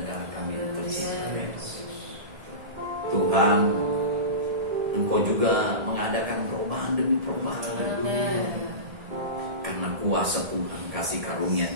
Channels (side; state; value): left; late; 1.7 ms